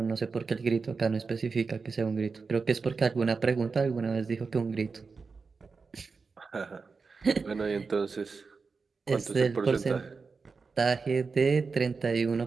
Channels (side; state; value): left; quieter; 4.7 dB